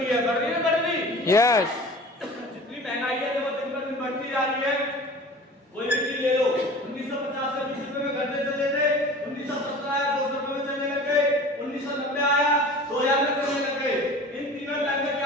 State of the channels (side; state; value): both; normal; correlation 0.40